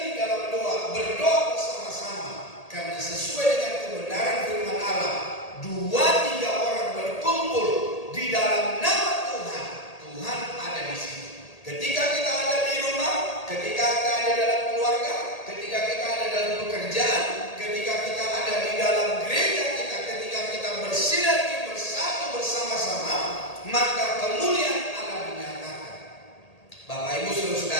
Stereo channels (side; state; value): right; late; 1.8 ms